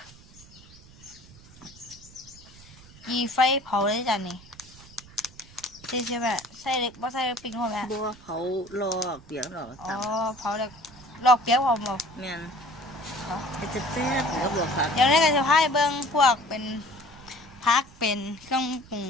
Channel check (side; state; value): right; noise; rumble, 22 dB below the sound